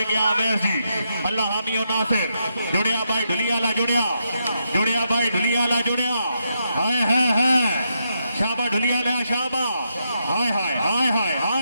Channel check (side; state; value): both; inverted; correlation -0.81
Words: गया अवैस जी अल्लाह हामी और नासिर जुड़िया भाई ढुलियाला जुड़िया भाई ढुलियाला जुड़िया हाय हाय हाय शाबा ढुलियाला शाबा हाय हाय हाय हाय